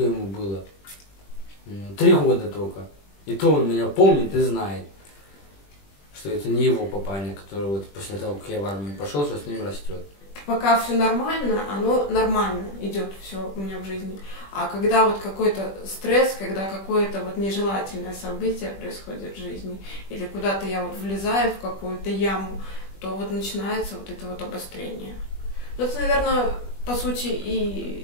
ему было? 3 года только. И то он меня помнит и знает, что это не его папаня, который вот после того, как я в армию пошел, что с ним растет. Пока все нормально, оно нормально идет все у меня в жизни. А когда вот какой-то стресс, когда какое-то вот нежелательное событие происходит в жизни, или куда-то я вот влезаю в какую-то яму, то вот начинается вот это вот обострение. Ну, это, наверное, по сути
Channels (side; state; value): right; late; 20 ms